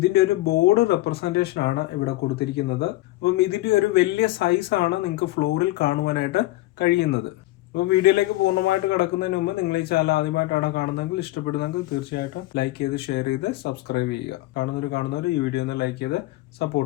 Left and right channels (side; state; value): right; quieter; 18.0 dB